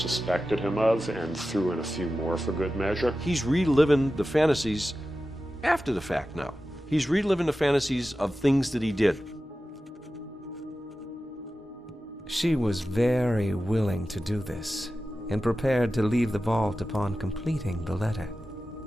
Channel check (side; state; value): both; normal; correlation 0.93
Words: him of and threw in a few more for good measure. He's reliving the fantasies after the fact now. He's reliving the fantasies of things that he did. She was very willing to do this and prepared to leave the vault upon completing the letter,